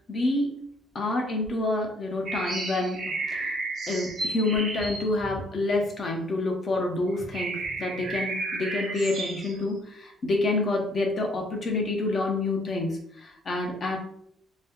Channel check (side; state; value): both; normal; correlation 0.62